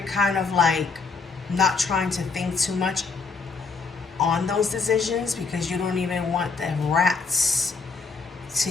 kind of like not trying to think too much on those decisions, because you don't even want the rats to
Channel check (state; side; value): quieter; right; 4.7 dB